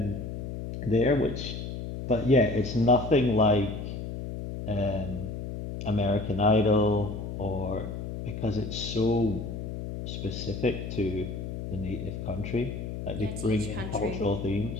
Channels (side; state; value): left; noise; hum, 6 dB below the sound